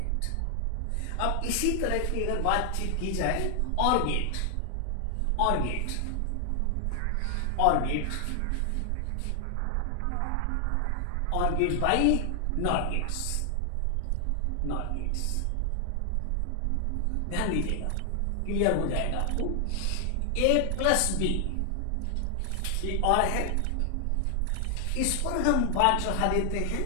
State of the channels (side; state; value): both; different; correlation 0.00